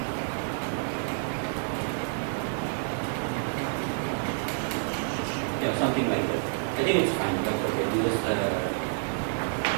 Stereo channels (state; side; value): silent; left; 59 dB below the other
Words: Yeah, something like that. I think it's fine, but okay, you just